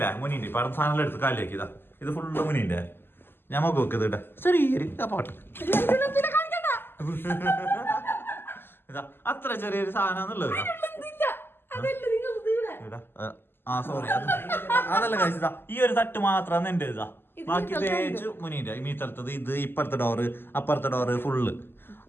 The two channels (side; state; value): right; late; 0.10 ms